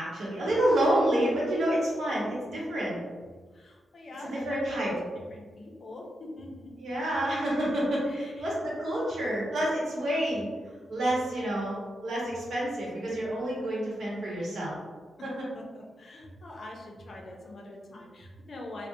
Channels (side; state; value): both; normal; correlation 0.85